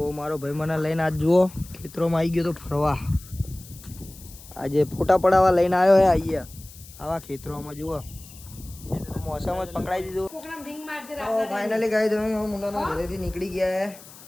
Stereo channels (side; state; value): left; noise; hiss, 19 dB below the sound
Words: મારો ભાઈ મને લઈને આજ જુઓ ખેતરોમાં આવી ગયો તો ફરવા. આજે ફોટા પડાવવા લઈને આવ્યો હે. અહીંયા આવા ખેતરોમાં જુઓ મોસમ જ પકડાઈ દીધું. તો ફાઇનલી ગાઈસ અમે મુન્નાના ઘરેથી નીકળી ગયા હે.